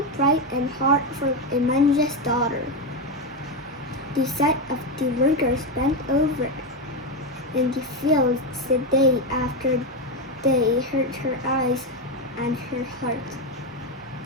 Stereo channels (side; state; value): both; normal; correlation 0.10